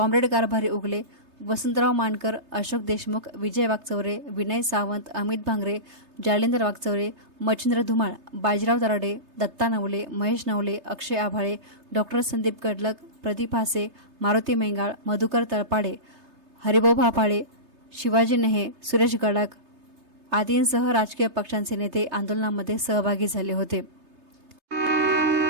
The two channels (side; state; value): left; late; 3.3 ms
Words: कारभारी उगले, वसंतराव मानकर, अशोक देशमुख, विजय वागचौरे, विनय सावंत, अमित भांगरे, जालिंदर वागचौरे, मच्छिंद्र धुमाळ, बाजीराव दराडे, दत्ता नवले, महेश नवले, अक्षय आभाळे, डॉक्टर संदीप कडलक, प्रदीप हासे, मारुती मेंगाळ, मधुकर तळपाडे, हरिभाऊ भापाळे, शिवाजी नेहे, सुरेश गडाख आदींसह राजकीय पक्षांचे नेते आंदोलनामध्ये सहभागी झाले होते।